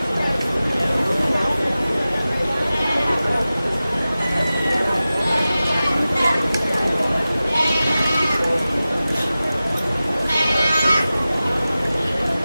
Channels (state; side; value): inverted; both; correlation -0.95